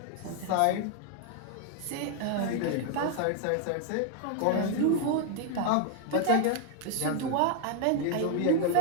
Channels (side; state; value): both; different; correlation 0.00